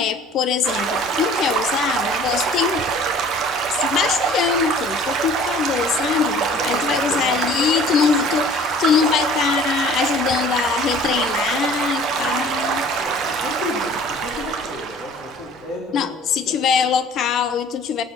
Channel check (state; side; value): normal; both; correlation 0.49